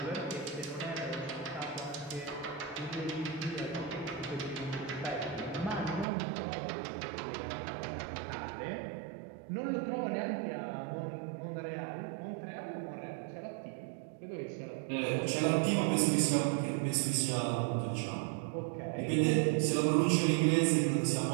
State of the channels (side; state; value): left; drops out; at 6.1 s